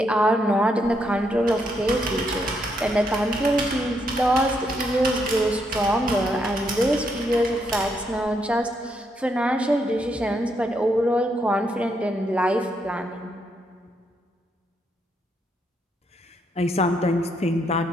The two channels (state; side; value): normal; both; correlation 0.77